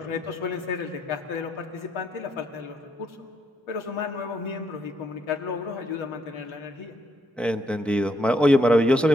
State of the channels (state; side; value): normal; both; correlation 0.74